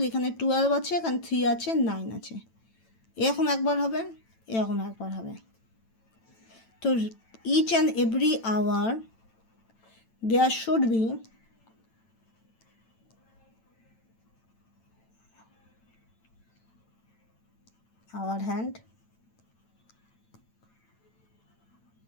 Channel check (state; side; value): late; right; 9.0 ms